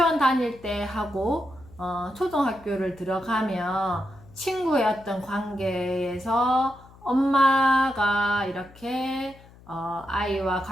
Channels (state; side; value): noise; left; hum, 23 dB below the sound